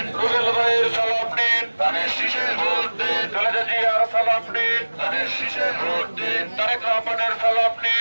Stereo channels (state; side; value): inverted; both; correlation -1.00